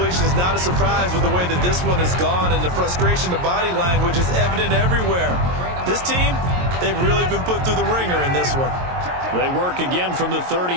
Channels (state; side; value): late; left; 22 ms